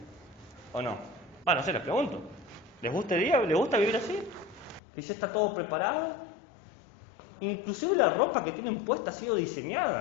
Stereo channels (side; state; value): right; drops out; at 4.8 s